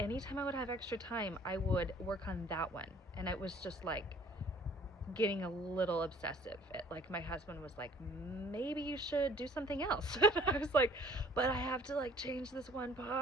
I would have extra time, I would work on that one. And it was just like getting a little obsessive. Like my husband was like, maybe you should do something else. And I was like, but I have to like change this one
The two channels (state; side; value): normal; both; correlation 0.55